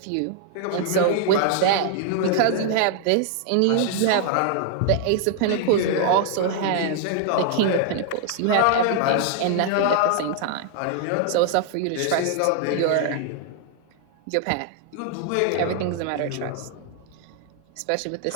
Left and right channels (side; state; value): both; different; correlation 0.00